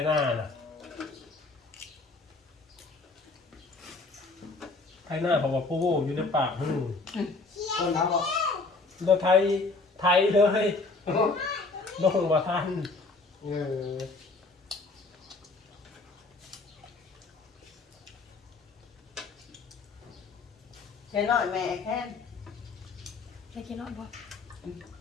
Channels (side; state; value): right; quieter; 3.6 dB